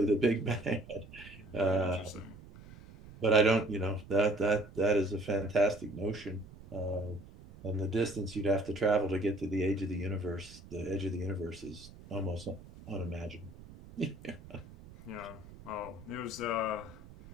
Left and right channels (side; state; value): right; noise; rumble, 18 dB below the sound